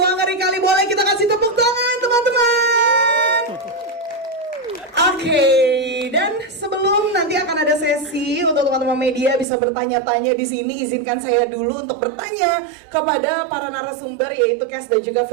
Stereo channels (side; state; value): left; drops out; at 9.5 s